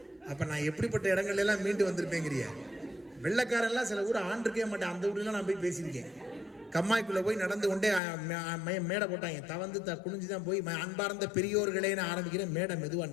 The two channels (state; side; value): drops out; right; at 8.0 s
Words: அப்ப நான் எப்படிப்பட்ட இடங்கள்ல எல்லாம் மீண்டு வந்திருப்பேங்கிறிய. வெள்ளக்காரெல்லாம் சில ஊர் ஆண்டிருக்கவே மாட்டேன், அந்த ஊர்லாம் நான் போய் பேசியிருக்கேன். கம்மாய்க்குள்ள போய் நடந்து கொண்டே மேடை போட்டாங்க. தவந்து குனிஞ்சுதான் போய் அன்பார்ந்த பெரியோர்களேன்னு ஆரம்பிக்கிறேன். மேடை மெதுவா